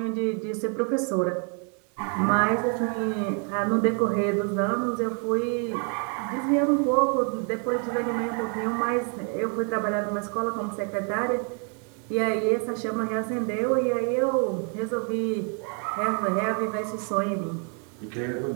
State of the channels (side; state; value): left; quieter; 39.4 dB